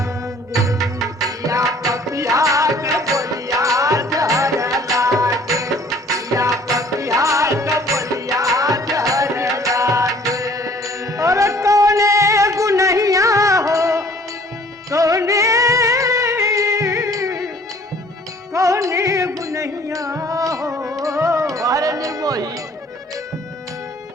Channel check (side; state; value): both; normal; correlation 0.55